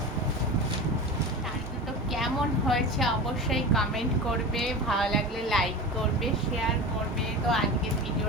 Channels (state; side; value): normal; both; correlation 0.29